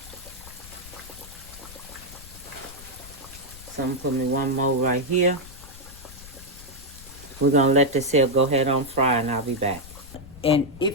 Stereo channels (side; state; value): left; noise; rumble, 17 dB below the sound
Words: So I'm gonna put me one more right here. We're gonna let this here go ahead on fry and I'll be back. And